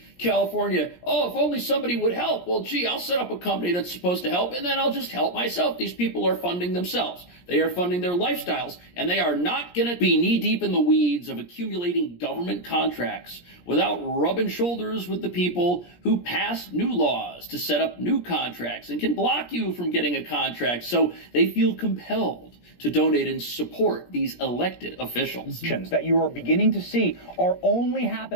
California. Oh, if only somebody would help. Well, gee, I'll set up a company that's supposed to help, and then I'll just help myself. These people are funding themselves. They are funding their lifestyles, and they are not going to be knee-deep in the weeds of accumulating government contracts without rubbing shoulders with the people who pass new laws to set up new contracts and can block you from getting a contract. So they feel compelled to donate and support these elected officials. That you are beginning to see are only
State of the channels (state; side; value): late; right; 17 ms